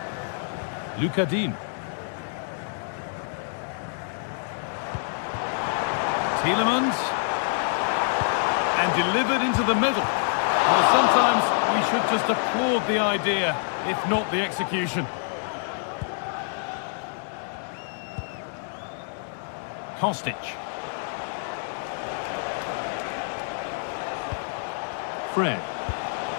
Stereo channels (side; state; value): right; silent; digital silence